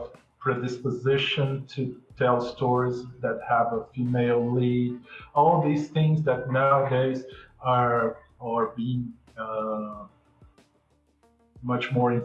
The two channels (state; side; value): identical; both; correlation 1.00